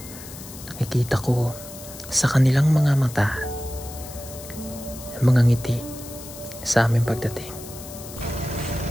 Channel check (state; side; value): noise; left; hiss, 14 dB below the sound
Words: Nakikita ko sa kanilang mga mata ang mga ngiti sa aming pagdating.